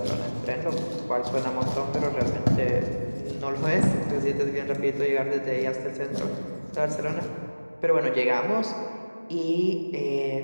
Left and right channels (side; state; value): both; inverted; correlation -1.00